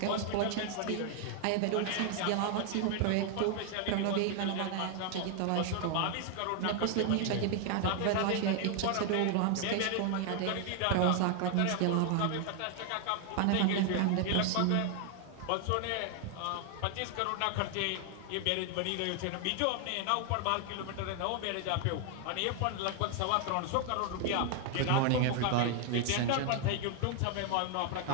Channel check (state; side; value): different; both; correlation 0.00